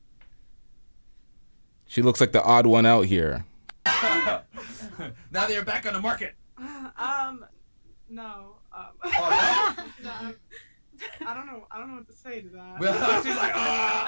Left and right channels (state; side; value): inverted; both; correlation -1.00